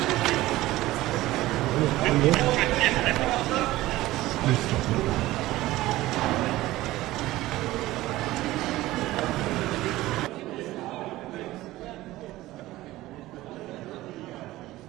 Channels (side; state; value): left; quieter; 17.1 dB